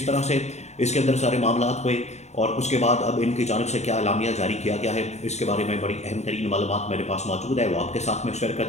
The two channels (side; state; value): right; late; 0.32 ms